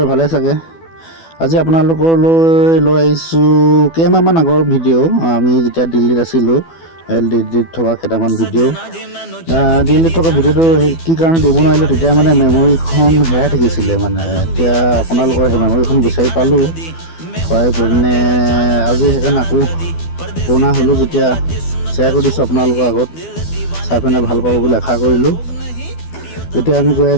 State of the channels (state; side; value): late; right; 12 ms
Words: ভালে চাগে। আজি আপোনালোকলৈ লৈ আহিছোঁ কেইমাহমান আগৰ ভিডিঅ'। আমি যেতিয়া দিল্লীত আছিলোঁ, দিল্লীত থকা কেইটামান ভিডিঅ'। দিল্লীত থকা ভিডিঅ'টো কি কাৰণে দিব নোৱাৰিলোঁ, তেতিয়া মানে মেমৰিখন হেৰাই থাকিছিলে। এতিয়া আপোনালোকৰ সেই মেমৰিখন বিচাৰি পালোঁ, পাই পিনে আজি সেইকাৰণে আকৌ পুৰণা হ'লোঁ যেতিয়া শ্বেয়াৰ কৰি দিছোঁ আপোনালোকৰ আগত। চাই পিনে ভাল পাব বুলি আশা কৰিলোঁ। এতিয়া আমি গৈ